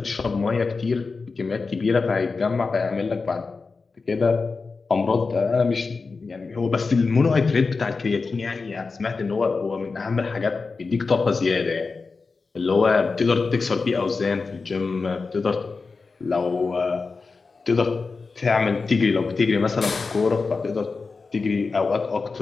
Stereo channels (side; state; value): right; quieter; 4.3 dB